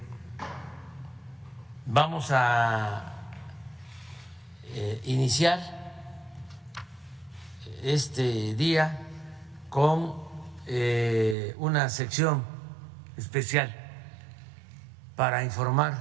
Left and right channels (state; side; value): drops out; left; at 11.4 s